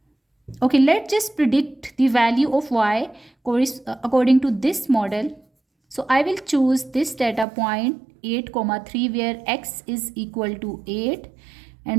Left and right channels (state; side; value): drops out; left; at 7.5 s